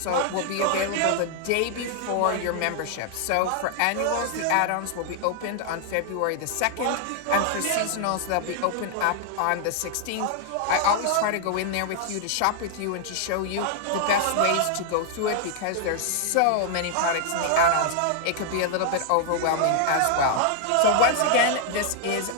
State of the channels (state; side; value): different; both; correlation 0.00